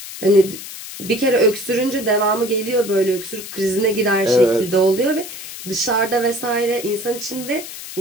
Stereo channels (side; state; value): left; noise; hiss, 11 dB below the sound